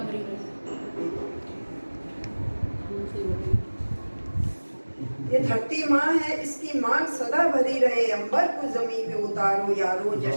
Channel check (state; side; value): inverted; both; correlation -1.00